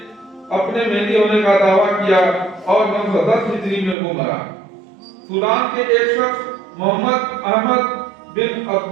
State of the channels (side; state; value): left; drops out; at 4.0 s